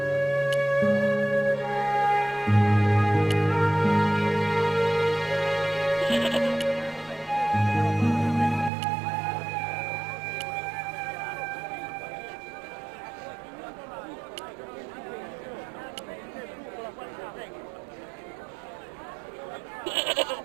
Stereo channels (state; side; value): drops out; left; at 8.7 s